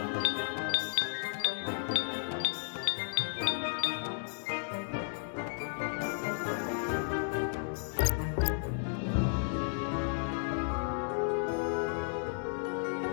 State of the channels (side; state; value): right; silent; digital silence